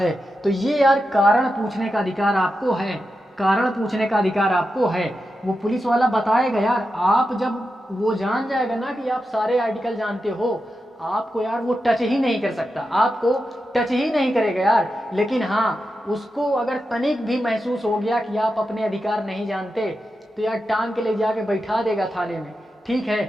तो ये यार कारण पूछने का अधिकार आपको है, कारण पूछने का अधिकार आपको है। वो पुलिस वाला बताएगा यार, आप जब वो जान जाएगा ना कि आप सारे आर्टिकल जानते हो, आपको यार वो टच ही नहीं कर सकता, आपको टच ही नहीं करेगा यार। लेकिन हाँ, उसको अगर तनिक भी महसूस हो गया कि आप अपने अधिकार नहीं जानते तो यार टांग के ले जाके बैठा देगा थाने में। ठीक है,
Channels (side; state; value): both; normal; correlation 0.89